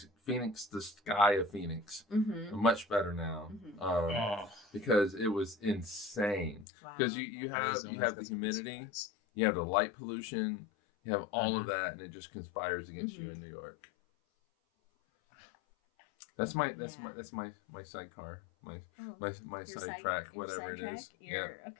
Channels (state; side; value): drops out; right; at 6.7 s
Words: Phoenix, the sky of Phoenix, much better now, because it was insane. Because you have the humidity, you have the light pollution. You have all of that, and it just conspires against you in New York. That's my sidecar, my sidetrack, whatever it is.